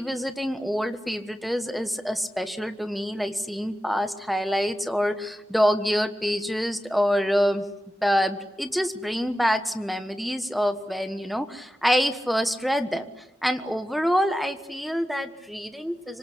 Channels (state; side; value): normal; both; correlation 0.92